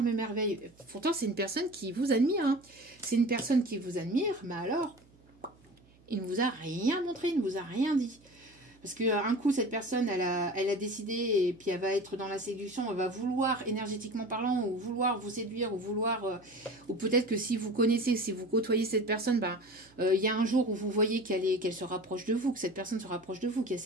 m'émerveille. Pourtant, c'est une personne qui vous admire. Hein. C'est une personne qui vous admire, mais alors, il ne vous a rien montré, il ne vous a rien dit. Parce qu'un coup, cette personne, elle a décidé, et puis elle va être dans la séduction, elle va vouloir, énergétiquement parlant, ou vouloir vous séduire, ou vouloir... ou peut-être que si vous connaissez, si vous côtoyez cette personne, ben, y a un jour où vous voyez qu'elle se rapproche de vous, que cette personne se rapproche de vous, qu'il y a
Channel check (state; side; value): noise; right; hum, 29 dB below the sound